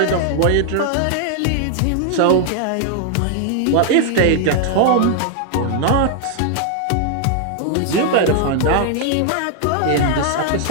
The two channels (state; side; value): different; both; correlation 0.00